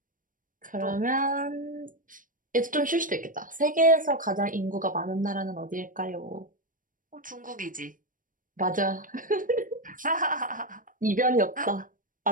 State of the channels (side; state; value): left; late; 0.39 ms